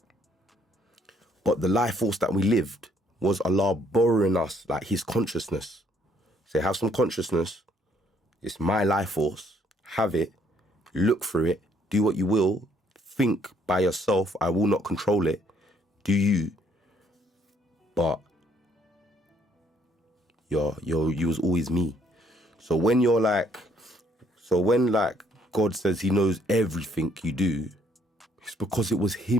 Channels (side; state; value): both; normal; correlation 0.66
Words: But the life force that we lived was Allah borrowing us, like his consciousness. Say, have some consciousness. It's my life force. Have it. Look through it. Do what you will. Think by yourself. I will not control it. Do you. But you was always me. So when God says he knows everything you do, it's because it was